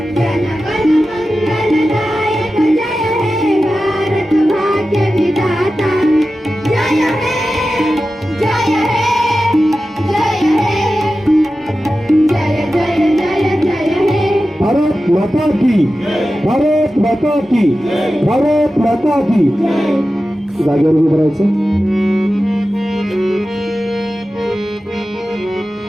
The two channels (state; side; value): normal; both; correlation 0.93